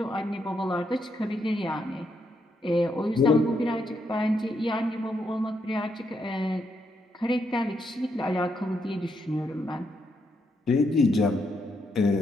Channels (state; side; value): normal; both; correlation 0.78